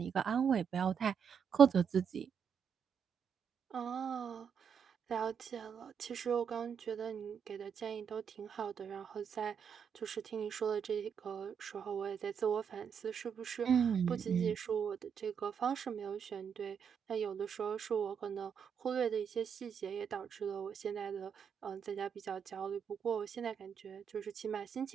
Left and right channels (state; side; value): quieter; left; 7.2 dB